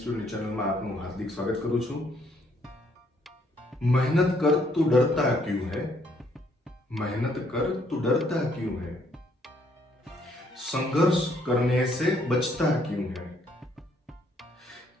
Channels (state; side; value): normal; both; correlation 0.68